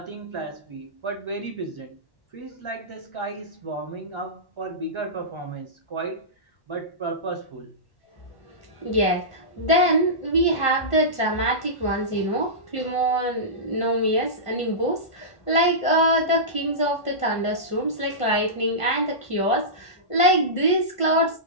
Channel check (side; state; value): right; late; 1.5 ms